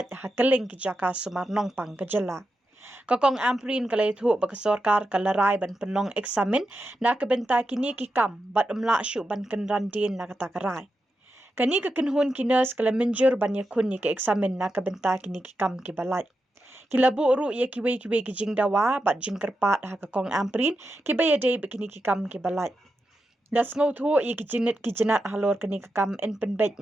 ha keling ki jaka sumarnong pang kejela. Kakong amprin kalai thu bakasorkar kalarai ban penong eksamen na kabenta kini ki kam bat umla syu ban kenrandin na kata karai. Kani kekenhun kinas kalamenjur ban yakun ni ke eksamen na kabenta kini ki kam ki balat. Kilabu uru ia kiwe ki jing dawa bat jing kerpat ha kakong amprin ki bayade bekini ki kam ki balat. Das ngau thu ia ki jinit ki jenat halor kini ki kam en penbet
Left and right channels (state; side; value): normal; both; correlation 0.88